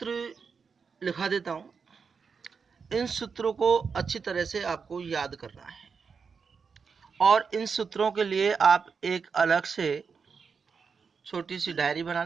लिखा देता हूं। इन सूत्रों को अच्छी तरह से आपको याद करना है और इन सूत्रों के लिए आप एक अलग से छोटी सी डायरी बना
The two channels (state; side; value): quieter; left; 5.6 dB